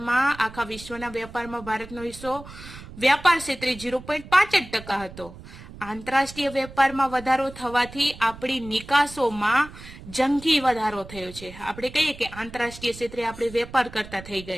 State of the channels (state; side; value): noise; right; rumble, 16 dB below the sound